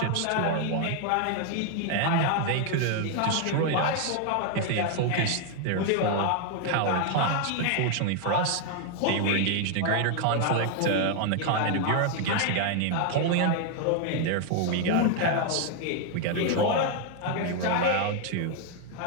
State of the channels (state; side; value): different; both; correlation 0.00